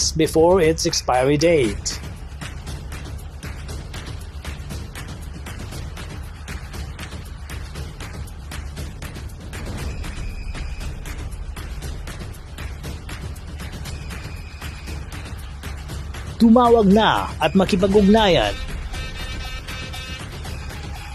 before its expiry date. Tumawag na at makipag-ugnayan.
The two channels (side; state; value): both; identical; correlation 1.00